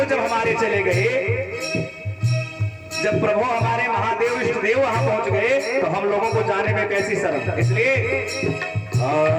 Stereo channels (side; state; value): both; identical; correlation 1.00